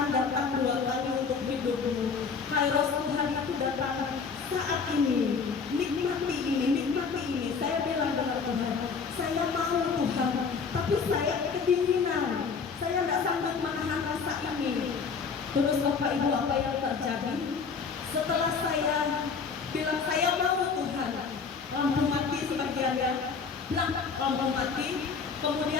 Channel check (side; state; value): right; quieter; 5.4 dB